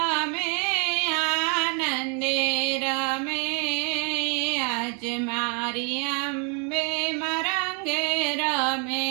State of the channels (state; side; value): quieter; left; 37.6 dB